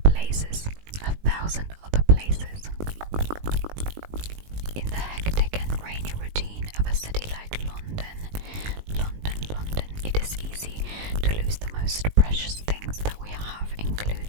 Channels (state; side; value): late; left; 19 ms